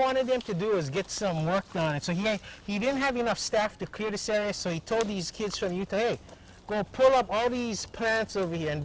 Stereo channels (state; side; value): identical; both; correlation 1.00